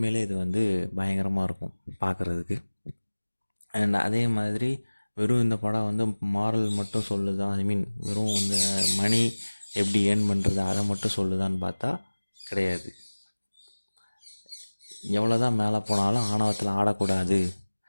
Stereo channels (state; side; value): inverted; both; correlation -1.00